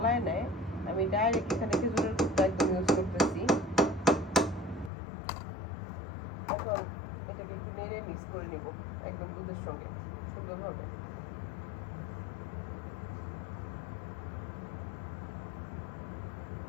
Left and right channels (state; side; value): drops out; right; at 4.9 s